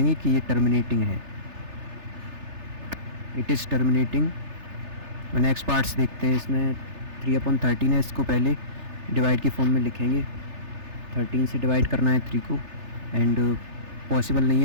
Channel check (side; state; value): left; late; 3.3 ms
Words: कि ये टर्मिनेटिंग है, it is terminating. Next parts देखते हैं। इसमें 3/13 है, इसको पहले डिवाइड की फॉर्म में लिखेंगे। 13 से डिवाइड करना है 3 को एंड पॉसिबल नहीं